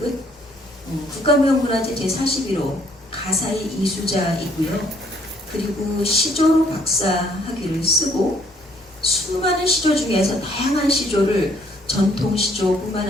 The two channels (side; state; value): both; normal; correlation 0.65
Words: 국가무형문화재 제41호 가사의 이수자이고요. 그리고 시조로 박사학위를 쓰고 수많은 시조 중에서 다양한 시조를 전통 시조뿐만